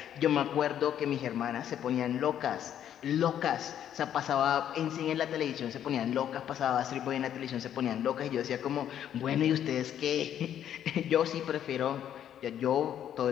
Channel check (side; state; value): right; quieter; 10.2 dB